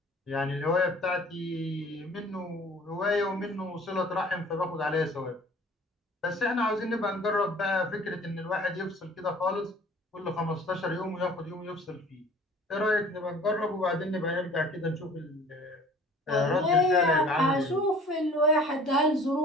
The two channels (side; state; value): both; normal; correlation 0.49